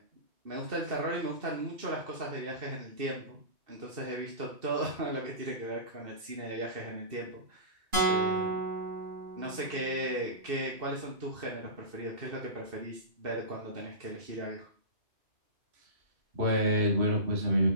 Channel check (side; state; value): left; late; 2.7 ms